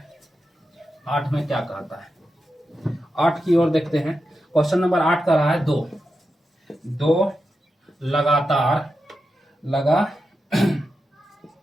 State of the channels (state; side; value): normal; both; correlation 0.89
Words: 8 में क्या कहता है, 8 की ओर देखते हैं। क्वेश्चन नंबर 8 का रहा है दो